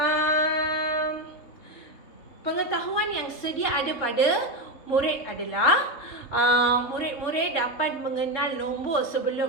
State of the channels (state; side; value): late; right; 3.6 ms